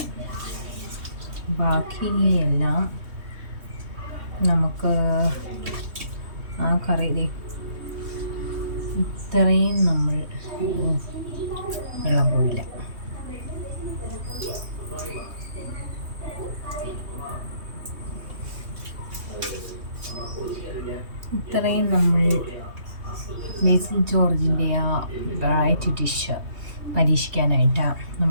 ബാക്കിയെല്ലാം നമുക്ക് ആ കറി ഇത്രയും നമ്മൾ വെള്ളം പോയില്ല. ഇത്രയും നമ്മൾ ബേസിൽ ജോർജിൻ്റെ ആ വെറൈറ്റി ഡിഷ് പരീക്ഷിക്കാനായിട്ട്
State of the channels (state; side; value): late; left; 3.2 ms